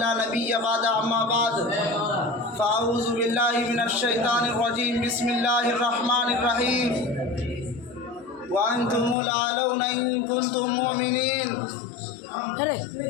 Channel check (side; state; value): right; drops out; at 9.2 s